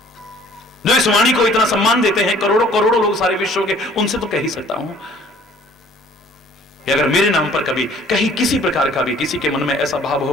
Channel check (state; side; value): normal; both; correlation 0.54